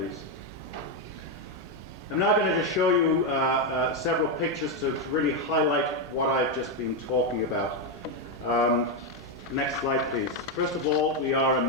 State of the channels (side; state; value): both; normal; correlation 0.04